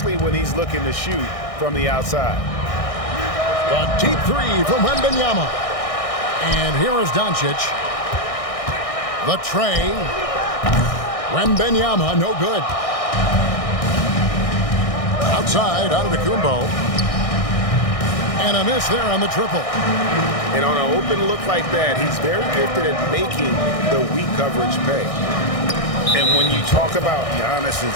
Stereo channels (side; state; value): right; late; 1.6 ms